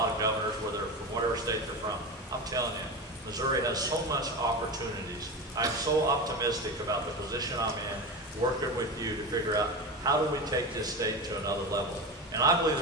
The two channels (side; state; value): both; normal; correlation 0.24